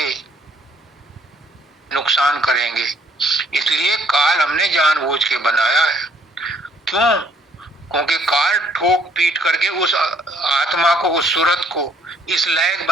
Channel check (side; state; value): both; normal; correlation 0.64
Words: नुकसान करेंगे। इसलिए काल हमने जानबूझ के बनाया है। क्यों? क्योंकि काल ठोक पीट करके उस आत्मा को, उस सूरत को इस लायक